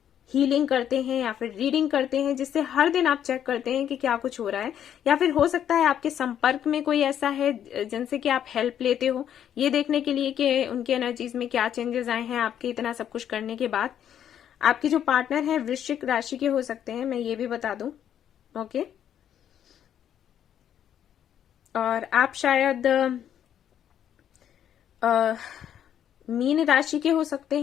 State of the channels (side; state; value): right; quieter; 9.8 dB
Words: हीलिंग करते हैं या फिर रीडिंग करते हैं, जिससे हर दिन आप चेक करते हैं कि क्या कुछ हो रहा है। या फिर हो सकता है आपके संपर्क में कोई ऐसा है जिनसे कि आप हेल्प लेते हो, ये देखने के लिए कि उनकी एनर्जीज में क्या चेंजेस आए हैं आपके इतना सब कुछ करने के बाद। आपके जो पार्टनर है वृश्चिक राशि के हो सकते हैं, मैं ये भी बता दूं, ओके। और आप शायद मीन राशि के हो सकते